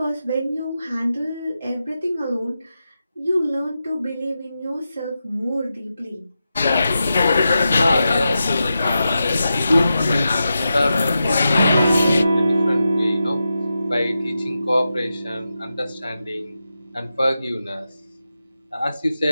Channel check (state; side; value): inverted; both; correlation -0.90